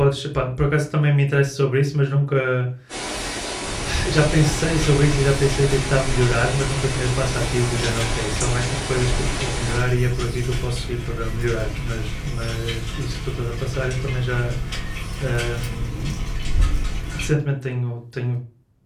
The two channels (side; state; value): both; identical; correlation 1.00